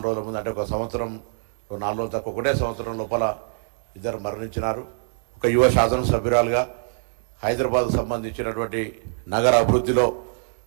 రోజుల ముందు, అంటే ఒక సంవత్సరం 4 రోజులు తక్కువ, ఒకటే సంవత్సరం లోపల ఇద్దరు మరణించినారు. ఒక యువ శాసనసభ్యురాలుగా హైదరాబాద్కు సంబంధించినటువంటి నగర అభివృద్ధిలో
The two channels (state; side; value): silent; left; 62 dB below the other